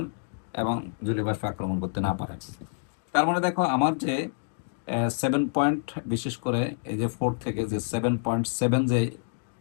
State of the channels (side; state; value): right; silent; digital silence